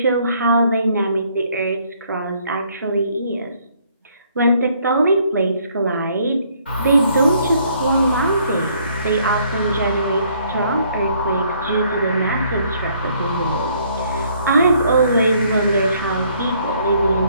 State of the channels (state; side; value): inverted; both; correlation -0.65